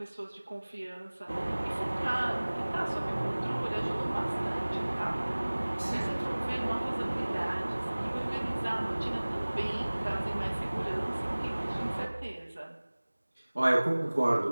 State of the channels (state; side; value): inverted; both; correlation -1.00